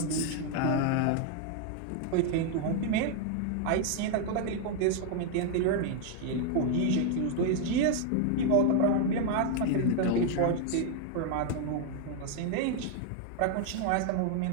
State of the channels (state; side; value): different; both; correlation 0.00